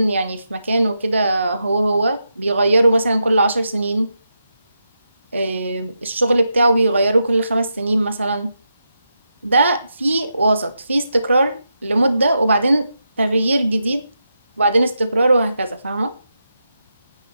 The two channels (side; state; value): both; inverted; correlation -0.86